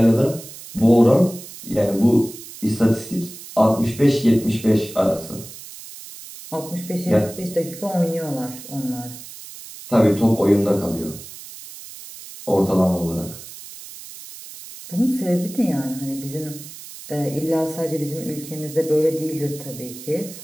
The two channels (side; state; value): right; noise; hiss, 15 dB below the sound